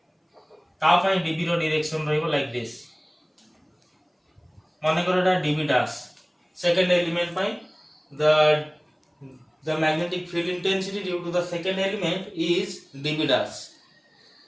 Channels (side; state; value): both; identical; correlation 1.00